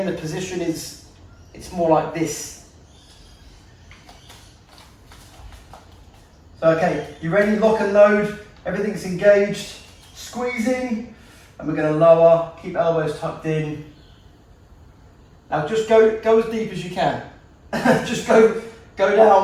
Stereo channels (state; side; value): identical; both; correlation 1.00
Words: the position it's more like this. So okay, you ready? Lock and load, everything's engaged, squeezing. And we're going to lower, keep elbows tucked in. Now just go as deep as you can. Just go